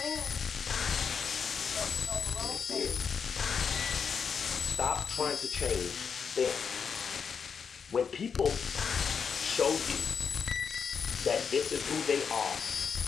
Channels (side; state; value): right; quieter; 6.4 dB